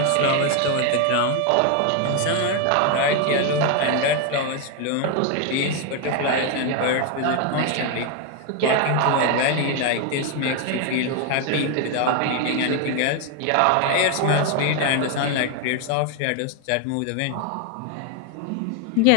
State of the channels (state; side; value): different; both; correlation 0.01